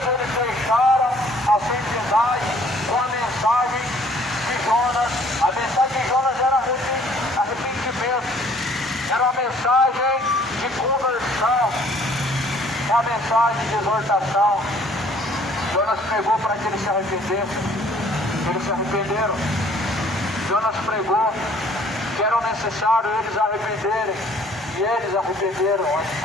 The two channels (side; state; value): both; normal; correlation 0.58